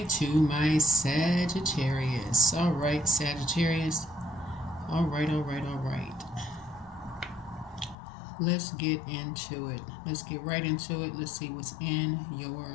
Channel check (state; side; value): drops out; right; at 8.0 s